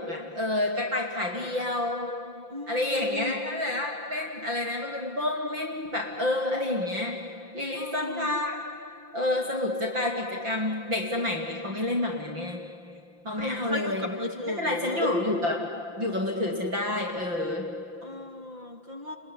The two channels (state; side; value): late; left; 5.8 ms